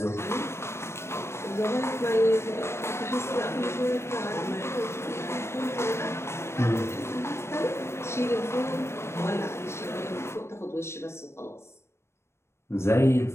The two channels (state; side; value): late; right; 0.13 ms